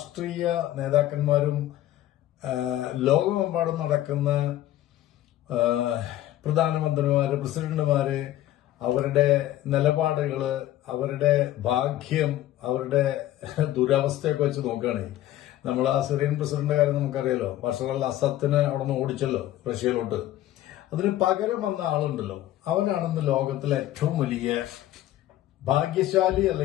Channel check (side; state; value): right; quieter; 14.0 dB